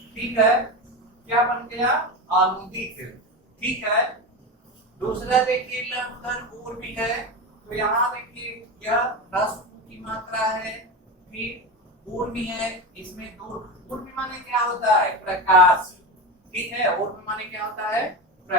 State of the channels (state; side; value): normal; both; correlation 0.21